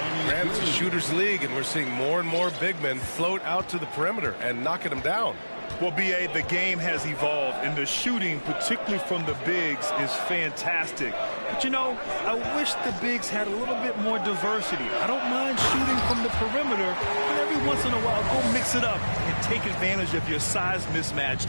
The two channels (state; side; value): inverted; both; correlation -1.00